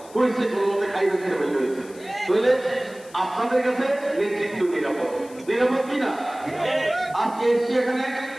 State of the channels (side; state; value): left; noise; hiss, 23 dB below the sound